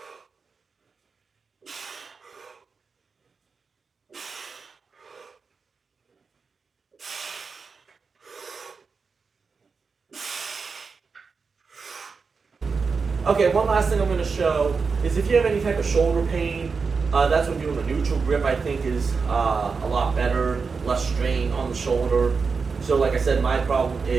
Okay, one last thing I'm going to show is if you have any type of shoulder pain, that's when doing a neutral grip I think is a lot better, less strain on the shoulder. So like I said, my problem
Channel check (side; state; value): left; quieter; 5.0 dB